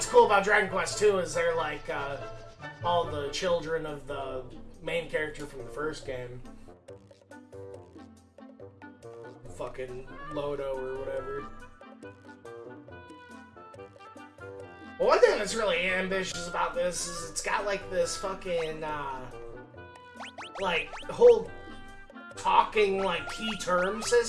cool about Dragon Quest 2 is they're like all the children of the main character from the first game. Fucking Lodo or whatever. Well, one thing that's really ambitious about this is it's got like this fucking like whole talking like key term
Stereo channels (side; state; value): both; identical; correlation 1.00